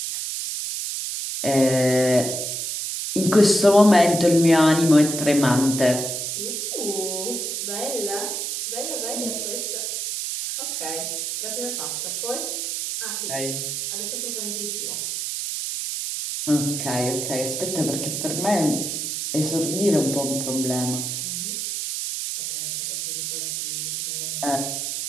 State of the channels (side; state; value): right; noise; hiss, 3 dB below the sound